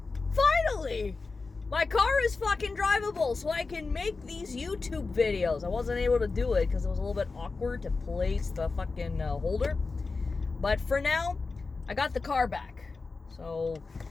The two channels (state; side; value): quieter; right; 4.1 dB